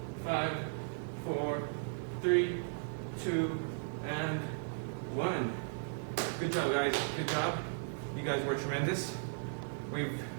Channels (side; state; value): left; silent; digital silence